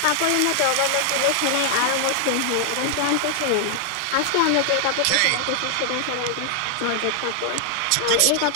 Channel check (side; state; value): both; different; correlation 0.00